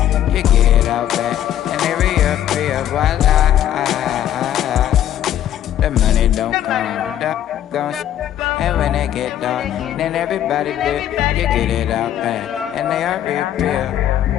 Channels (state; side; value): quieter; right; 11.3 dB